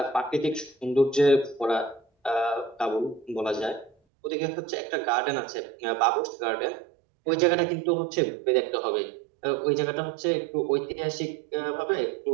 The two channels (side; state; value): left; drops out; at 3.9 s